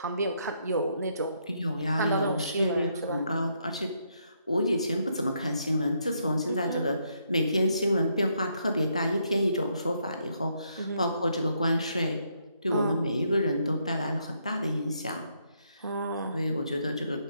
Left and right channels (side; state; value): both; inverted; correlation -0.75